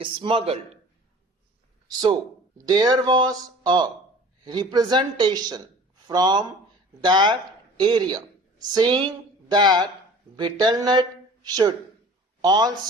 smuggled. So there was a representation from that area saying that betel nut should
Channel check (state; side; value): normal; both; correlation 0.44